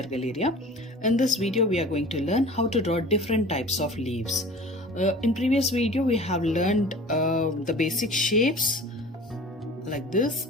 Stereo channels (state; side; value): normal; both; correlation 0.42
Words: Galleria. In this video we are going to learn how to draw different types of leaves. In previous video we have learned the basic shapes like this